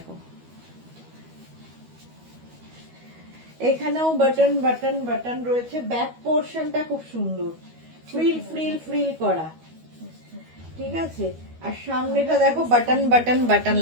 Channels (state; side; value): late; left; 13 ms